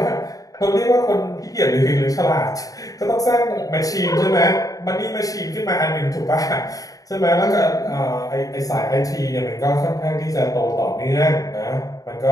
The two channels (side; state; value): right; late; 0.17 ms